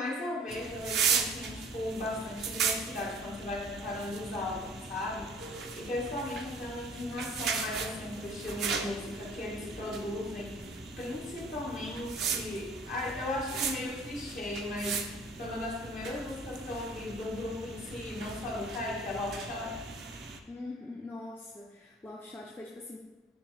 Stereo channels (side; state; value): both; normal; correlation 0.50